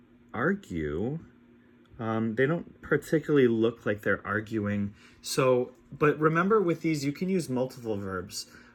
argue. They don't particularly look like they're arguing. So, but remember with these, you can use multiple verbs.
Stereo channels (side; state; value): both; identical; correlation 1.00